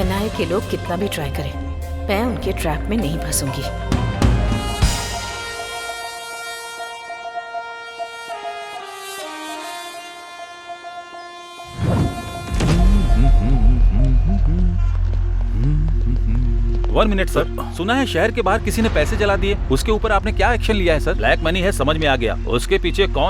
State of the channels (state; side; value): identical; both; correlation 1.00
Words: के लोग कितना भी ट्राई करें, मैं उनके ट्रैप में नहीं फंसूंगी। वन मिनट सर, सुना है शहर के बाहर किसी ने पैसे जला दिए, उसके ऊपर आपने क्या एक्शन लिया है सर? ब्लैक मनी है, समझ में आ गया, उसके पीछे